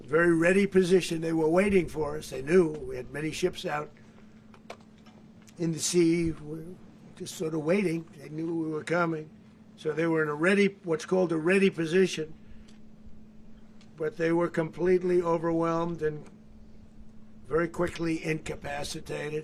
very ready position. They were waiting for us. They knew we had many ships out in the sea, just sort of waiting. They knew we were coming. So they were in what's called a ready position. But they were completely overwhelmed and very quickly incapacitated.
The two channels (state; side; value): identical; both; correlation 1.00